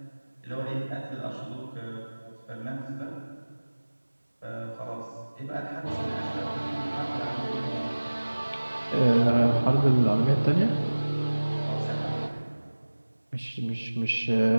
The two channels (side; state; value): both; inverted; correlation -1.00